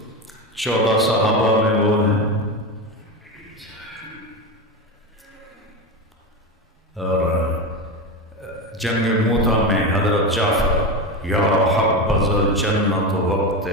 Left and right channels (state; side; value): normal; both; correlation 0.19